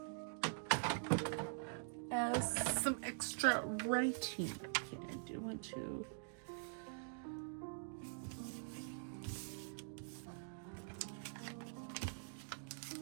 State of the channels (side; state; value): left; silent; digital silence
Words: as some extra writing. Okay, I do want to.